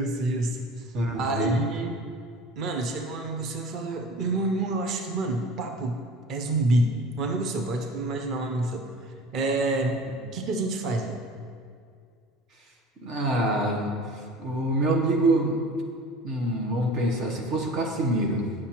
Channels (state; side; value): normal; both; correlation 0.40